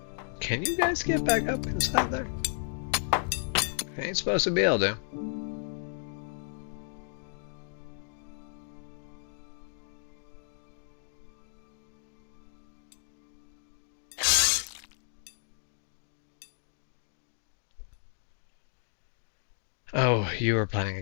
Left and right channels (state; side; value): silent; right; digital silence